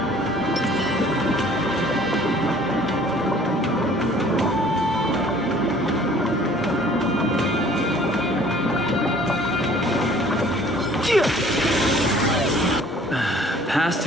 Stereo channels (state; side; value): normal; both; correlation 0.53